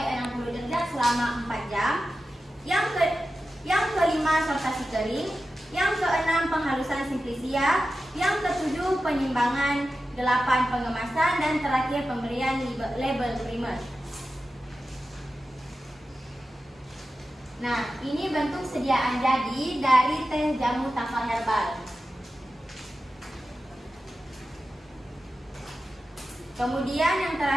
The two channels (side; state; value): both; normal; correlation 0.93